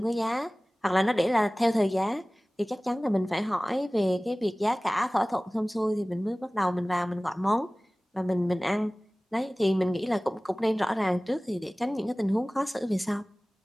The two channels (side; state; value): both; normal; correlation 0.98